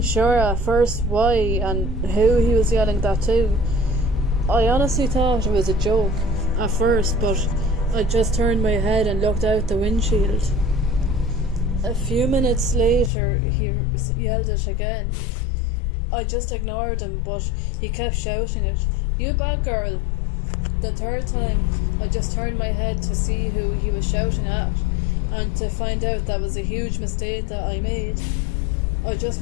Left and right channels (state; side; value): drops out; right; at 13.1 s